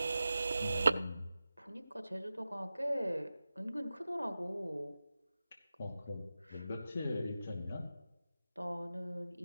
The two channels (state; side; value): inverted; both; correlation -0.93